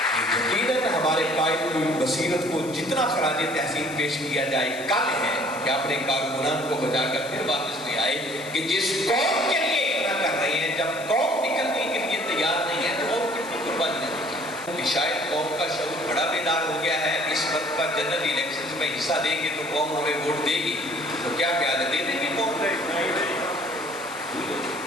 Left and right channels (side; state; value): left; noise; hiss, 17 dB below the sound